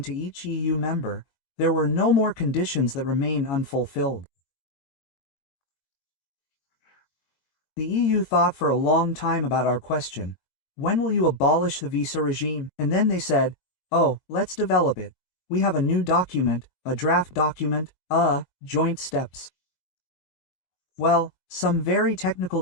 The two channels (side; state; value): right; late; 22 ms